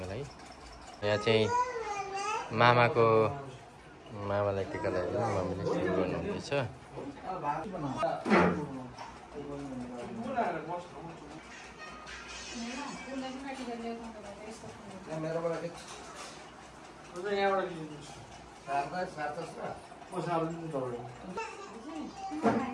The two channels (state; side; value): identical; both; correlation 1.00